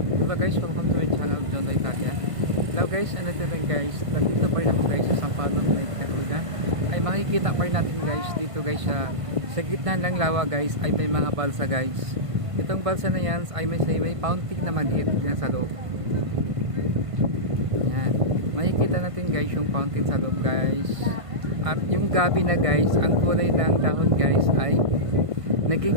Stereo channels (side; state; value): left; late; 1.5 ms